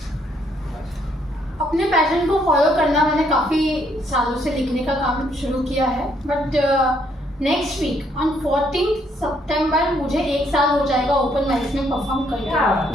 अपने passion को follow करना मैंने काफ़ी सालों से लिखने का काम शुरू किया है, बट नेक्स्ट वीक ऑन 14 सितंबर मुझे 1 साल हो जाएगा ओपन माइक्स में परफॉर्म करके।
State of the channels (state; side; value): normal; both; correlation 0.70